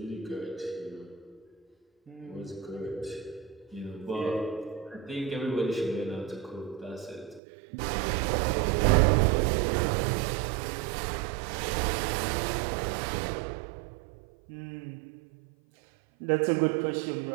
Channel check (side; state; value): left; drops out; at 7.4 s